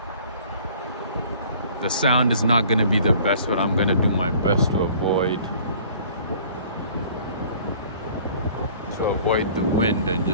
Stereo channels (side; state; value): both; inverted; correlation -0.52